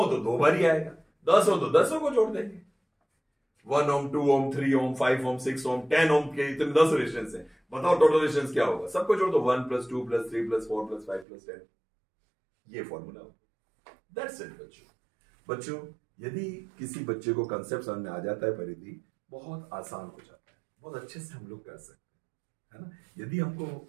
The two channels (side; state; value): left; drops out; at 11.2 s